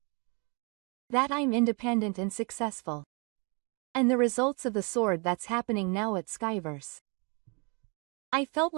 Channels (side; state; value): left; quieter; 33.2 dB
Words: That I'm independent and successful. And the results of the sword that's happening now at Skyverse. I felt